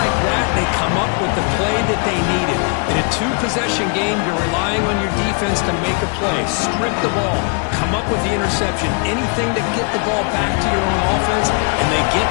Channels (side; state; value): right; quieter; 37.1 dB